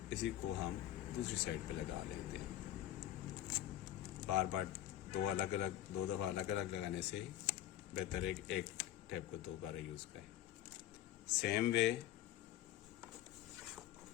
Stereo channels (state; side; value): quieter; right; 12.8 dB